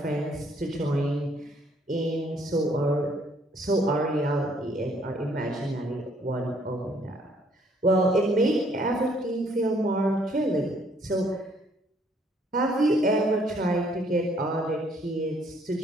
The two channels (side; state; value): both; normal; correlation 0.65